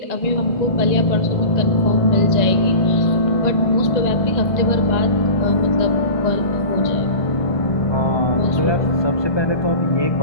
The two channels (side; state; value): right; late; 1.8 ms